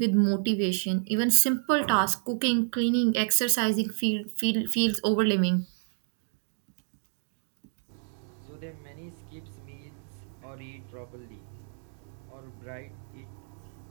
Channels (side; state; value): left; silent; digital silence